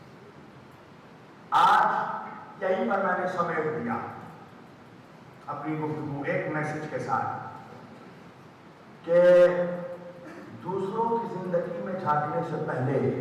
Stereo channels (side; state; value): both; identical; correlation 1.00